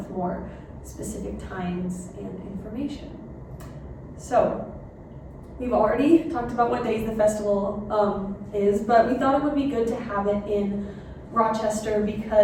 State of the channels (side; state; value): both; identical; correlation 1.00